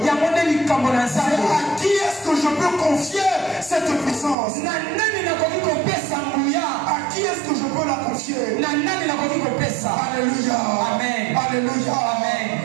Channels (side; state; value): left; drops out; at 4.4 s